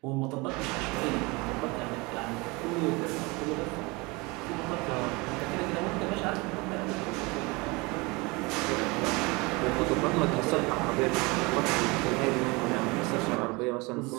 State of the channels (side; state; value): left; quieter; 25.7 dB